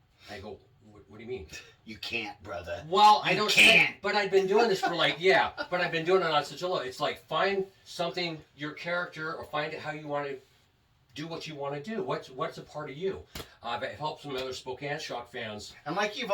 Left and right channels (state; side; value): identical; both; correlation 1.00